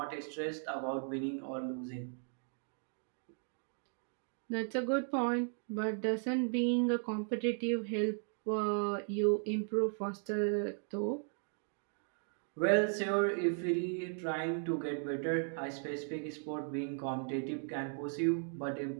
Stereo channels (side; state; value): left; silent; 53 dB below the other